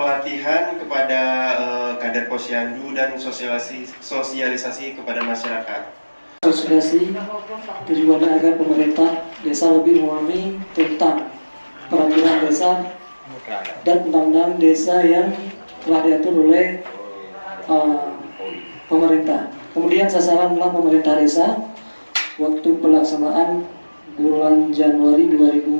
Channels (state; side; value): inverted; both; correlation -1.00